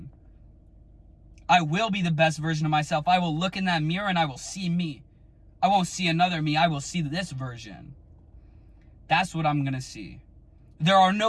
I will be the best version of myself. I will look in that mirror and I will see me. I won't see another me. I will see this version. That's what I'm going to see. There are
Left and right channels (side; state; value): both; identical; correlation 1.00